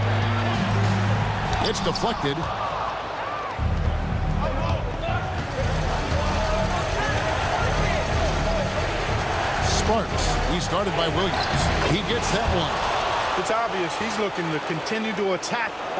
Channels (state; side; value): identical; both; correlation 1.00